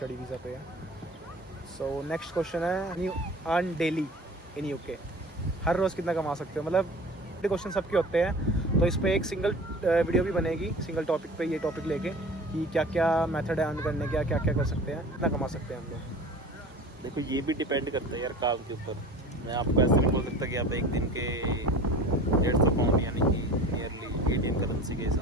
वीज़ा पे है। सो नेक्स्ट क्वेश्चन है, you earn daily in UK? हर रोज़ कितना कमा सकते हो? मतलब क्वेश्चन सबके होते हैं, तो इस पर एक सिंगल वीडियो भी बनेगी, सिंगल टॉपिक पे, ये टॉपिक लेके कि क्या क्या मेथड है अर्न करने का, क्या क्या कर सकते हैं, कितना कमा सकते हैं हम लोग। देखो ये भी डिपेंड करता है यार काम के ऊपर। मैं आपको ऐसा नहीं बोल सकता कि आप एक दिन के 150 पाउंड यानी कि नियरली इंडियन करेंसी के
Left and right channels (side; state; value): both; normal; correlation 0.40